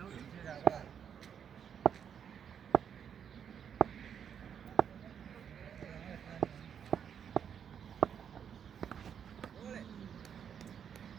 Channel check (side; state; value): left; quieter; 8.1 dB